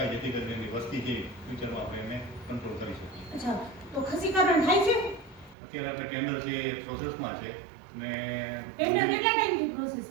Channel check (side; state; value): left; drops out; at 5.6 s